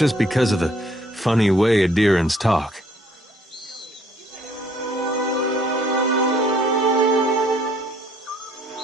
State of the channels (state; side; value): normal; both; correlation 0.62